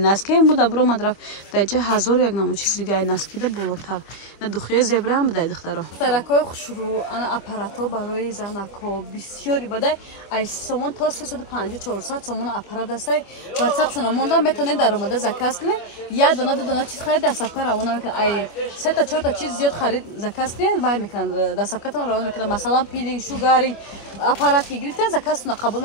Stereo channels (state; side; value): late; right; 25 ms